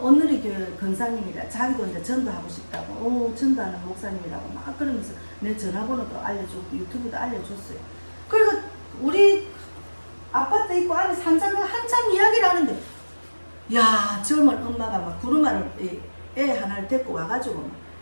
오늘의 교회 권사님이라 자기도 이제 전도하고 싶다고 전도하는 목사님이라고 막 그러면서 내 전화번호도 알려주고 유튜브도 알려줬어요. 그리고 우리 아파트 있고 안에 한참 이야기를 하는데 야 젊은 엄마가 막 구루마를 애 하나를 데리고 와가지고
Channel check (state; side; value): inverted; both; correlation -1.00